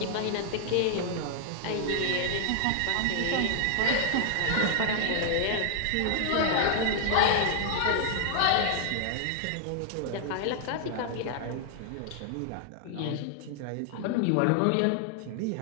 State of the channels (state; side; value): different; both; correlation 0.00